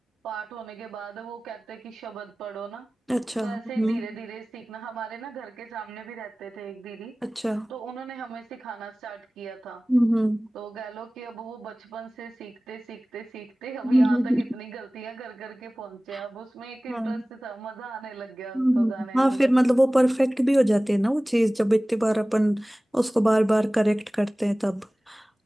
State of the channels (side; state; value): both; normal; correlation 0.98